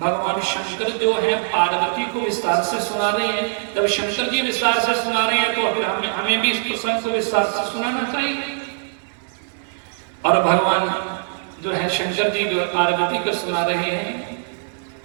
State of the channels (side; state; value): left; silent; digital silence